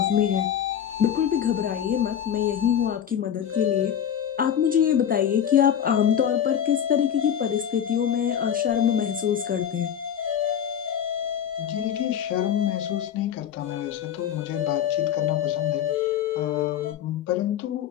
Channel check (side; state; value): right; quieter; 9.3 dB